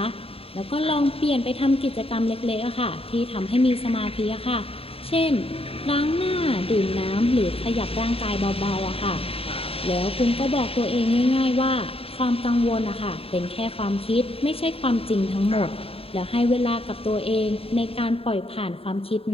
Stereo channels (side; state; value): right; late; 0.27 ms